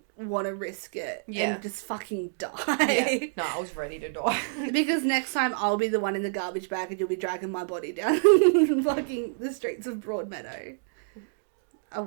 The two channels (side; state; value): left; silent; digital silence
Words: want to risk it and just fucking die. Yeah. No, I was ready to die. Because next time I'll be the one in the garbage bag and you'll be dragging my body down fucking the streets of Broadmeadow. I